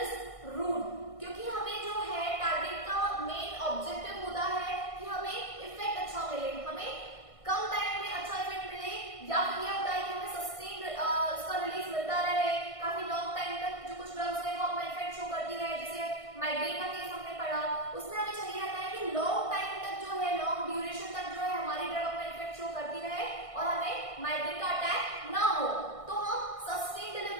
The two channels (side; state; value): right; late; 1.5 ms